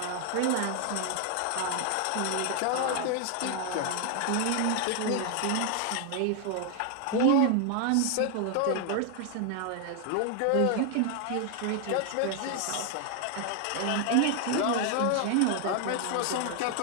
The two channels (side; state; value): both; different; correlation 0.00